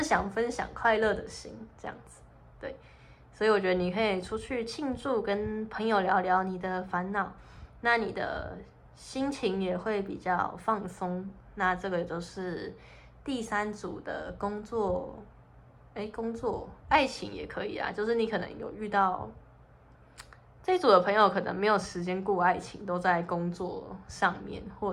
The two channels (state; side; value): identical; both; correlation 1.00